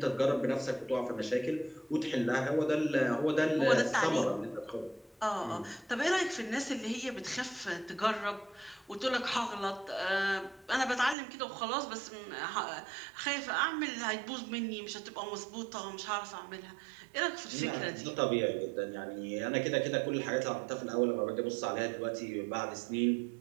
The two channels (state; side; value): drops out; left; at 11.2 s